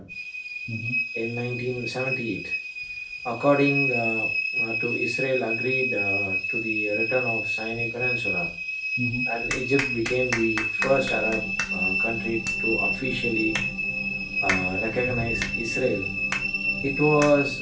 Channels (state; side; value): identical; both; correlation 1.00